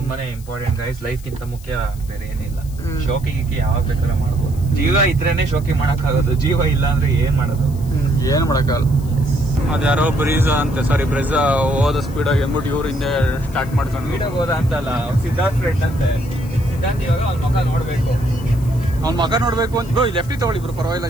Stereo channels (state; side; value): noise; left; hiss, 22 dB below the sound